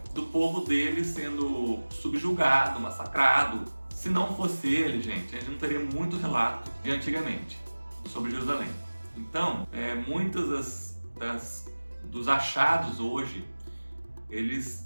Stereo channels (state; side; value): inverted; both; correlation -1.00